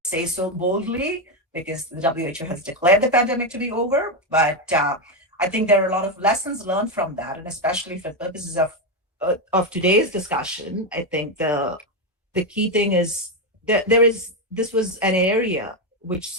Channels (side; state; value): both; normal; correlation 0.08